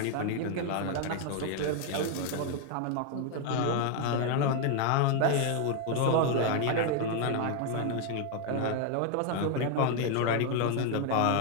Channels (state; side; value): different; both; correlation 0.00